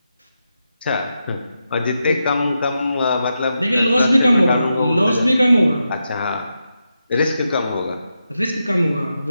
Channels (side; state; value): both; inverted; correlation -0.87